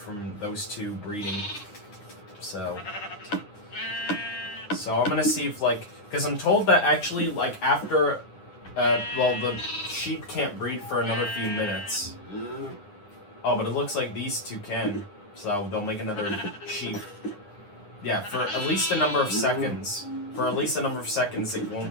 those 2 breeding. So So I'm gonna see if, like, because I'm told that actually, like, after, well, the sheep can't breed for another few minutes. Oh, but it looks like these two can, so they'll make another sheep. Yeah, for at least a number of seconds. For at least a number of seconds, it won't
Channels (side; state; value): right; late; 9.9 ms